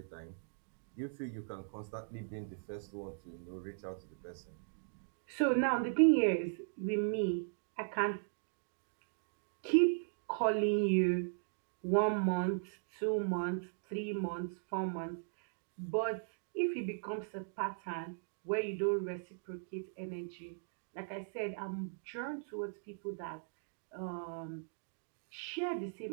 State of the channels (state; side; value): silent; left; digital silence